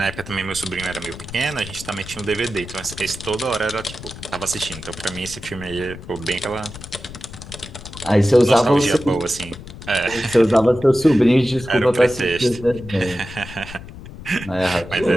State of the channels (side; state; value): left; noise; rumble, 14 dB below the sound